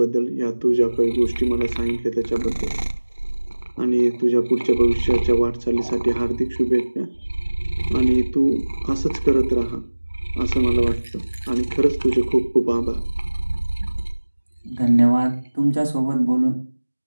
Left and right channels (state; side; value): inverted; both; correlation -1.00